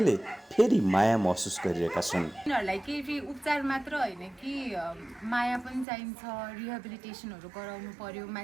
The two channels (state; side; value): drops out; left; at 5.9 s